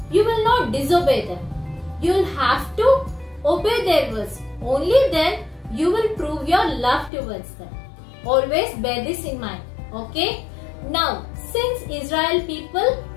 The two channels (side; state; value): right; drops out; at 7.1 s